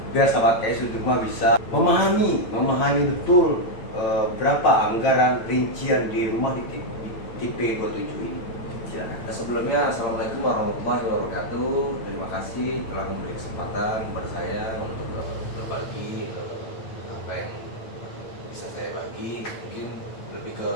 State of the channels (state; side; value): late; right; 9.0 ms